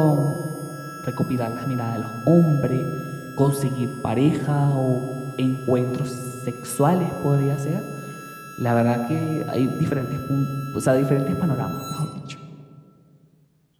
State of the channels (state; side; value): identical; both; correlation 1.00